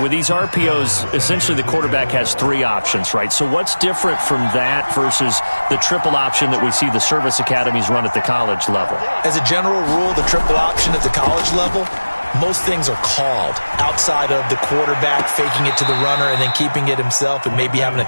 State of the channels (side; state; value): both; inverted; correlation -1.00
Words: these RPOs, essentially the quarterback has 3 options, right? So what's different from that versus the triple option that we see the service academies run at the college level? As a general rule, the triple option at the college level, most things are called outside of the quarterback faking it to the runner and then keeping it himself and maybe having a